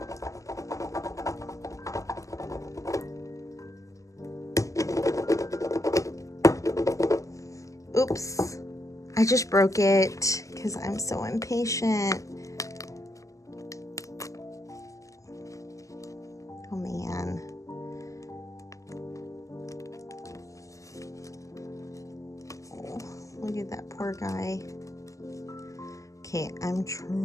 Oops, I just broke it because I'm so impatient. Oh man. Oh, look at that poor guy. Okay, I'm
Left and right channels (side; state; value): right; late; 0.16 ms